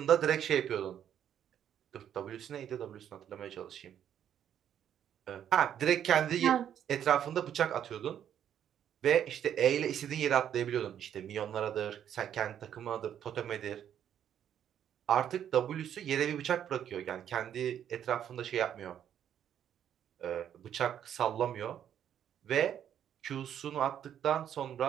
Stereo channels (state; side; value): quieter; left; 9.7 dB